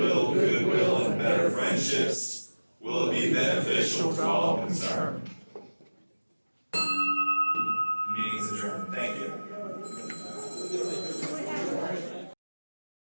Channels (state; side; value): inverted; both; correlation -1.00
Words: goodwill and better friendships? Will it be beneficial to all concerned?